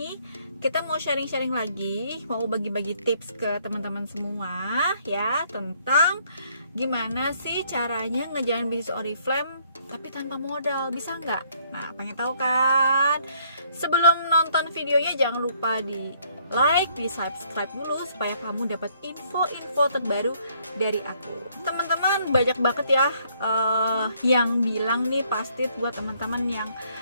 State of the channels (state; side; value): inverted; both; correlation -0.66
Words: kita mau sharing-sharing lagi, mau bagi-bagi tips ke teman-teman semua ya, tentang gimana sih caranya ngejalanin bisnis Oriflame tapi tanpa modal, bisa nggak? Nah, pengen tahu kan? Sebelum nonton videonya jangan lupa di like, di subscribe dulu supaya kamu dapat info-info terbaru dari aku. Teman-teman, banyak banget ya yang bilang nih, pasti buat teman-teman yang